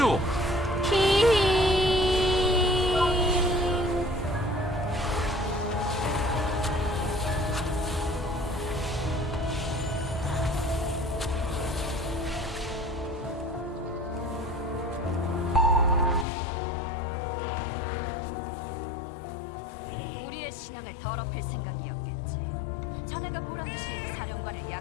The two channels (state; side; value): drops out; right; at 16.2 s